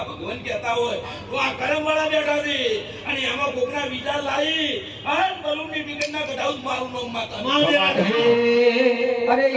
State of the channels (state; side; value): identical; both; correlation 1.00